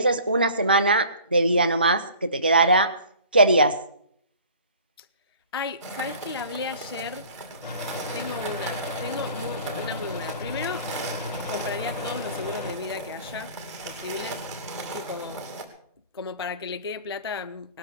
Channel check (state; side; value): inverted; both; correlation -0.46